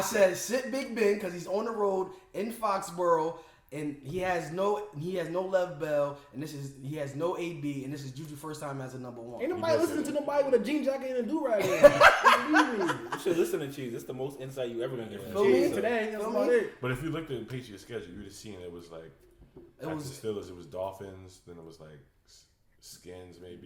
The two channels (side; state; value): both; identical; correlation 1.00